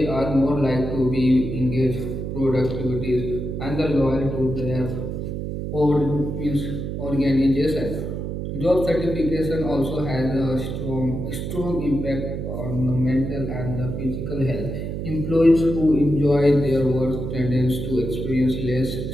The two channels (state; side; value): noise; right; hum, 4 dB below the sound